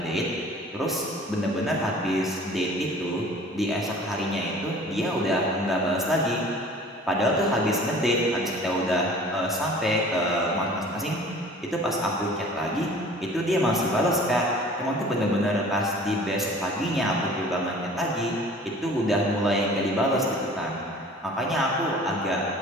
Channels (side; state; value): both; normal; correlation 0.47